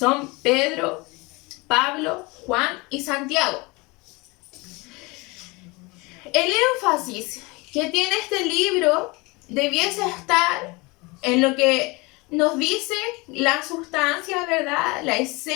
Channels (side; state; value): right; quieter; 25.4 dB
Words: Pedro, Pablo, Juan y Santiago. El énfasis que tiene este libro debiese estar en lo que nos dice la sustancia, ¿verdad?, la